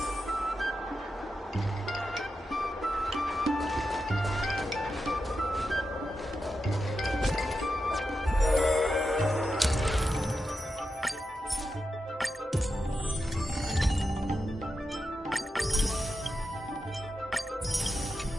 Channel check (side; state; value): both; normal; correlation 0.88